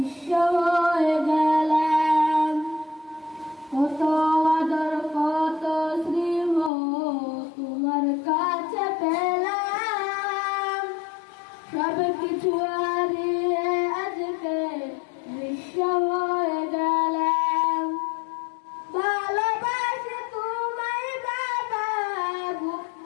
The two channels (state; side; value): drops out; right; at 6.7 s